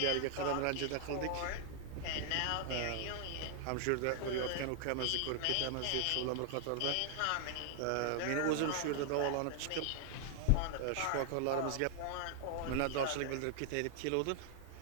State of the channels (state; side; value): different; both; correlation 0.00